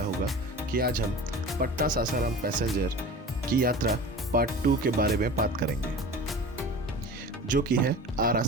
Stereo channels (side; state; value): both; normal; correlation 0.37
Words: होगा कि आज हम पटना सासाराम पैसेंजर की यात्रा पार्ट 2 के बारे में बात करेंगे, जो कि है आरा